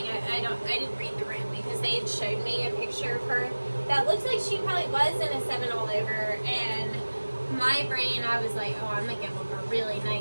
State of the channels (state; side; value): inverted; both; correlation -1.00